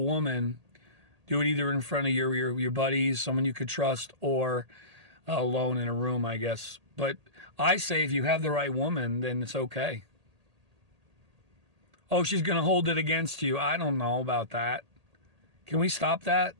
Do it either in front of your buddies, someone you could trust, or alone in a room, I guess. But I say if you have the right woman, then it's okay. Oh, she's going to hold it against you. I don't know about that. Can we stop that?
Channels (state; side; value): late; left; 1.8 ms